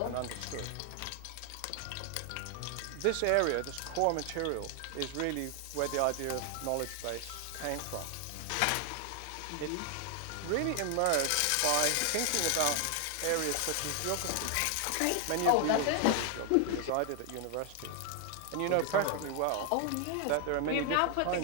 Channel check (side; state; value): both; different; correlation 0.00